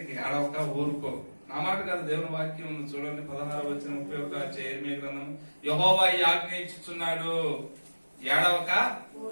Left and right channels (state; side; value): inverted; both; correlation -1.00